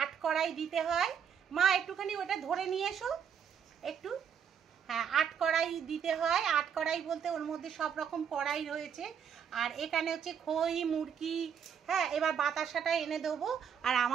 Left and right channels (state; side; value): quieter; left; 7.8 dB